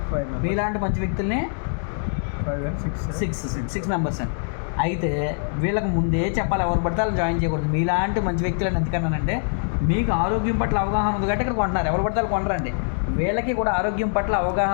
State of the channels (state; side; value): silent; right; digital silence